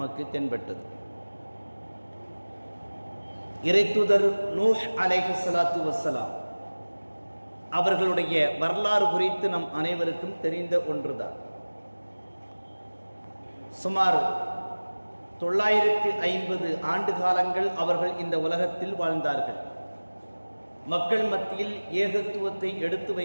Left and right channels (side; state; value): both; inverted; correlation -1.00